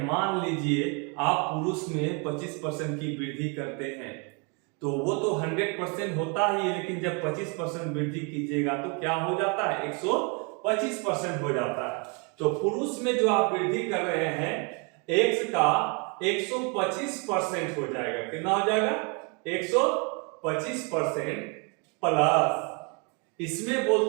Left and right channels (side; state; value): left; quieter; 34.0 dB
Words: मान लीजिए आप पुरुष में 25% की वृद्धि करते हैं तो वो तो 100% होता ही है, लेकिन जब 25% वृद्धि कीजिएगा तो क्या हो जाता है? 125% हो जाता है। तो पुरुष में जो आप वृद्धि कर रहे हैं x का 125% हो जाएगा। कितना हो जाएगा? 125% प्लस इसमें